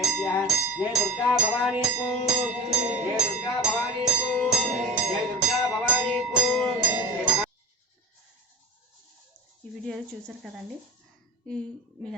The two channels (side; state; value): both; normal; correlation 0.34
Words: जय दुर्गा भवानी को, जय दुर्गा भवानी को, जय दुर्गा भवानी को। ఈ వీడియో చూసారు కదండి, మీ